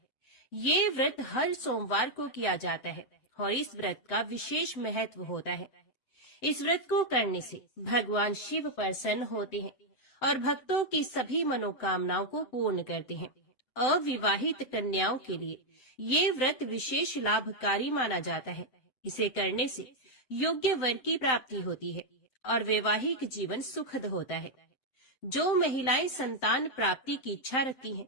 ये व्रत हर सोमवार को किया जाता है और इस व्रत का विशेष महत्व होता है। इस व्रत को करने से भगवान शिव प्रसन्न होते हैं और भक्तों की सभी मनोकामनाओं को पूर्ण करते हैं। अविवाहित कन्याओं के लिए ये व्रत विशेष लाभकारी माना जाता है। इसे करने से योग्य वर की प्राप्ति होती है और वैवाहिक जीवन सुखद होता है। जो महिलाएं संतान प्राप्ति की इच्छा रखती हैं,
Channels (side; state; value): right; late; 7.8 ms